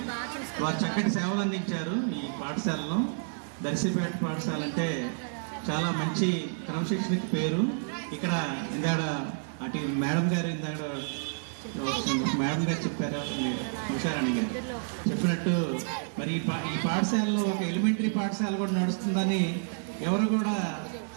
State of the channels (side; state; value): left; silent; 58 dB below the other